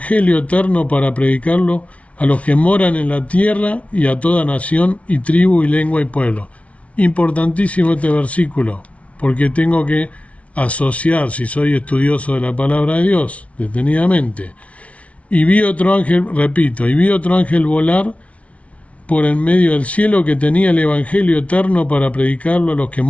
eterno para predicarlo a los que moran en la tierra y a toda nación y tribu y lengua y pueblo. Importantísimo este versículo, porque tengo que asociar, si soy estudioso de la palabra de Dios, detenidamente. Y vi otro ángel, repito, y vi otro ángel volar por en medio del cielo que tenía el evangelio eterno para predicarlo a los que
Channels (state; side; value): late; right; 0.064 ms